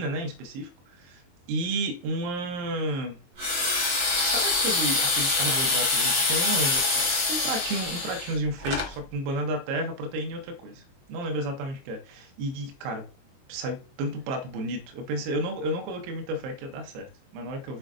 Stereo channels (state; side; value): late; left; 22 ms